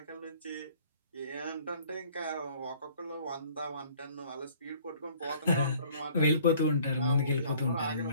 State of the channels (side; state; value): both; inverted; correlation -0.55